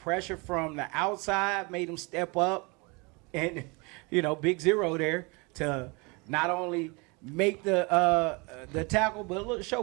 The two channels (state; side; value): quieter; left; 28.7 dB